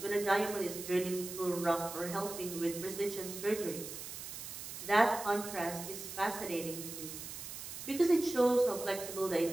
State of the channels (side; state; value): right; noise; hiss, 9 dB below the sound